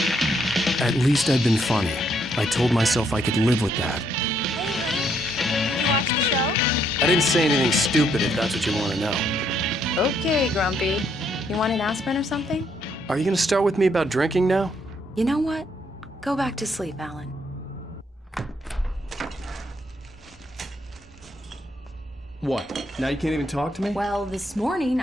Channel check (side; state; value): both; normal; correlation 0.72